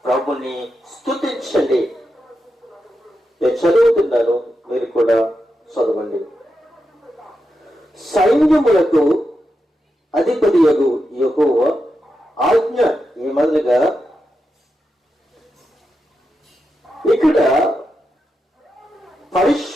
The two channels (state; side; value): normal; both; correlation 0.87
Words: ప్రభుని స్తుతించండి. నేను చదువుతున్నాను, మీరు కూడా చదవండి. సైన్యములకు అధిపతియగు యెహోవా ఆజ్ఞ ఏమనగా, ఇక్కడ